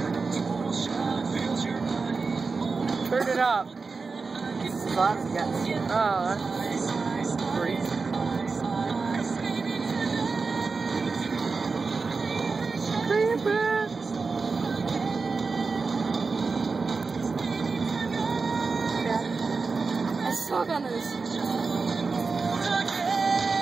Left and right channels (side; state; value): left; quieter; 4.4 dB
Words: Turn it up. So that's a guess. Oh, that's great. Creeper. I suck on this.